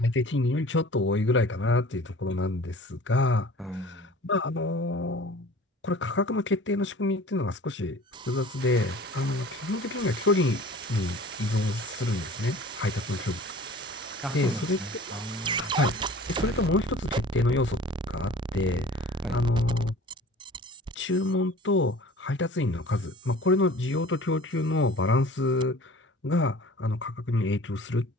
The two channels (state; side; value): normal; both; correlation 0.45